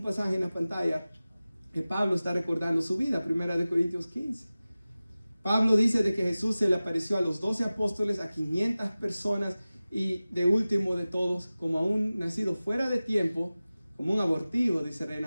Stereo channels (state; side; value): inverted; both; correlation -0.97